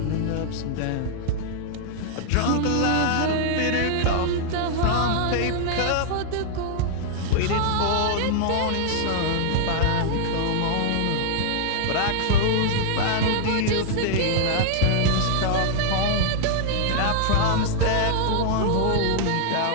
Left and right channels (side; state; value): both; different; correlation -0.01